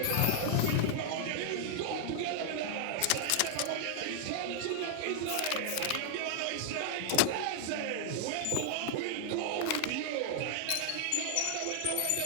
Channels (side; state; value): both; different; correlation 0.00